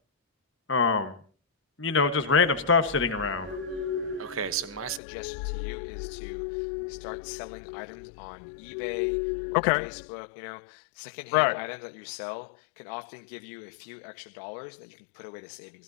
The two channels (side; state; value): right; drops out; at 5.0 s